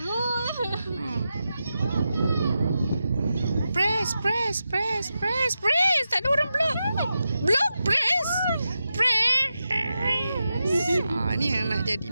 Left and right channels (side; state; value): both; inverted; correlation -0.89